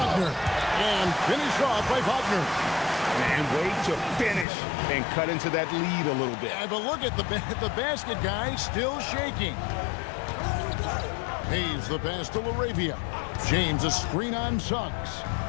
And finished off by Wagner. And wait to finish and cut into that lead a little bit. Yeah, but look at the basket guy still shaking. Hayes the pass to Laravia. James a screen on Suggs.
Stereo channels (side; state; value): right; drops out; at 4.5 s